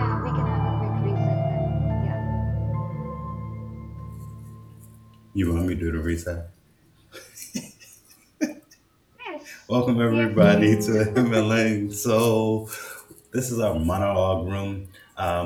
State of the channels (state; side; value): identical; both; correlation 1.00